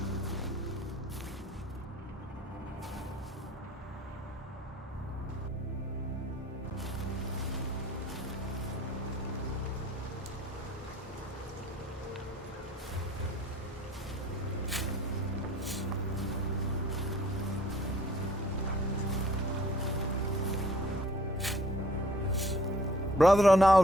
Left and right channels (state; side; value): normal; both; correlation 0.56